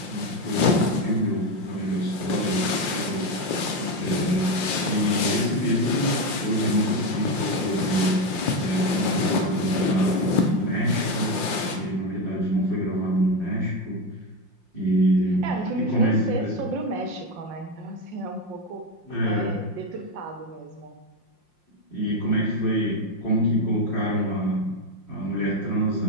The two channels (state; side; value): late; left; 5.7 ms